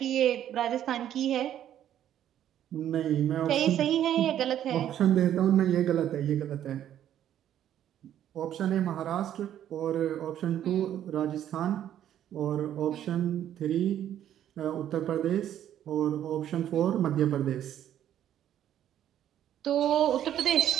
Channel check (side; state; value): left; quieter; 10.9 dB